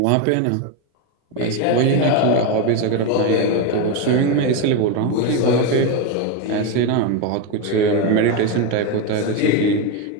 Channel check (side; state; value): both; different; correlation 0.03